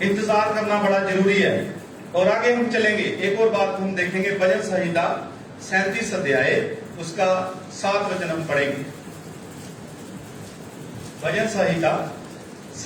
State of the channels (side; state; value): both; identical; correlation 1.00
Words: इंतजार करना बड़ा जरूरी है। और आगे हम चलेंगे, एक और बात हम देखेंगे, भजन संहिता 37 अध्याय उसका 7 वचन हम पढ़ेंगे। भजन संहिता